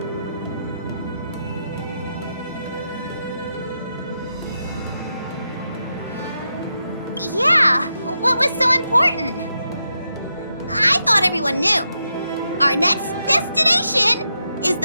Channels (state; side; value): inverted; both; correlation -0.85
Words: Yeah, what was so important? I thought everyone knew. Our next destination is